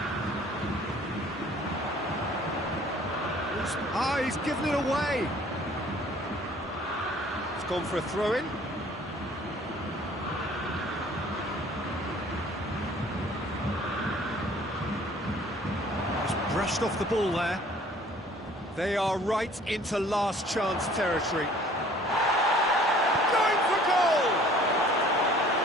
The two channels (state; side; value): normal; both; correlation 0.54